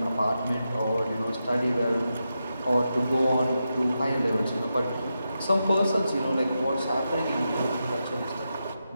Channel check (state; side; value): inverted; both; correlation -0.88